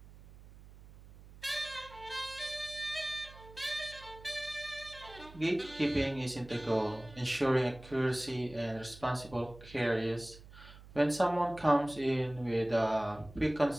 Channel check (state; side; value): noise; right; hum, 19 dB below the sound